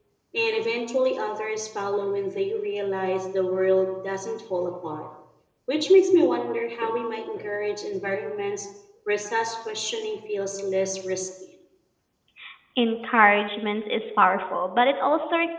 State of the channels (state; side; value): identical; both; correlation 1.00